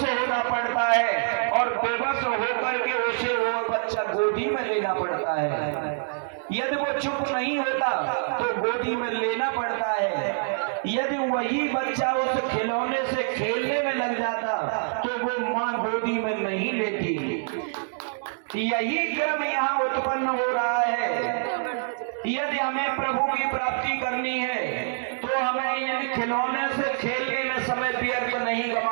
होना पड़ता है और बेबस होकर के उसे वो बच्चा गोदी में लेना पड़ता है। यदि वो चुप नहीं होता तो गोदी में लेना पड़ता है। यदि वही बच्चा उस खिलौने से खेलने में लग जाता तो वो माँ गोदी में नहीं लेती। यही क्रम यहाँ उत्पन्न हो रहा है। यदि हमें प्रभु की प्राप्ति करनी है तो हमें इन खिलौने से खेलने में समय व्यर्थ नहीं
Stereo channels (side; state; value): left; silent; digital silence